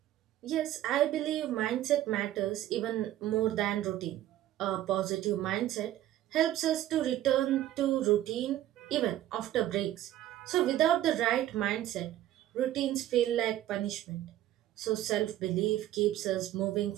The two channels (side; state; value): left; quieter; 13.3 dB